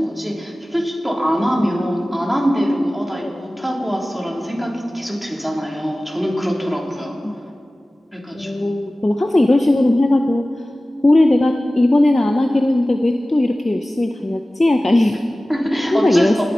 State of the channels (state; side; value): normal; both; correlation 0.97